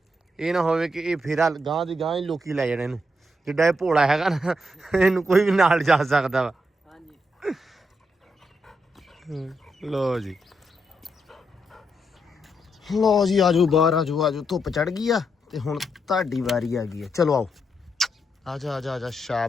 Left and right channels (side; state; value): both; normal; correlation 0.80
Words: ये ना होवे कि ये फेरा गांह दी गांह ही लोकी लै जाने इनू। ਜਿੱਡਾ ਇਹ ਭੋਲਾ ਹੈਗਾ ਨਾ ਇਹਨੂੰ ਕੋਈ ਵੀ ਨਾਲ ਜਾ ਸਕਦਾ ਵਾ। ਲੋ ਜੀ ਲੋ ਜੀ ਆਜੋ ਬਾਹਰ ਆਜੋ ਧੁੱਪ ਚੜ ਗਈ ਆ ਤੇ ਹੁਣ ਤੁਹਾਡੀ ਵਾਰੀ ਆ ਗਈ ਆ। ਚਲੋ ਆਓ ਆਜਾ ਆਜਾ ਆਜਾ